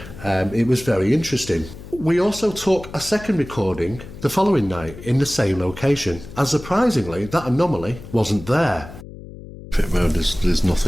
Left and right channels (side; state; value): left; noise; hum, 15 dB below the sound